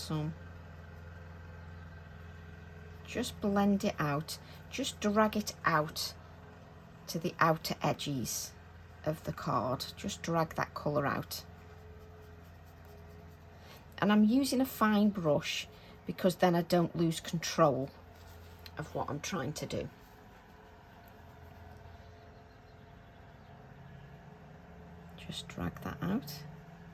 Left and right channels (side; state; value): both; identical; correlation 1.00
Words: Just blend it out. Just drag it out to the outer edges of the card. Just drag that colour out. And I'm using a fine brush because then I don't lose control of what I'm trying to do. Just drag that out.